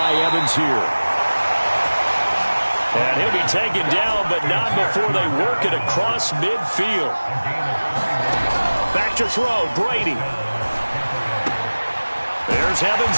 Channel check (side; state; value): both; inverted; correlation -1.00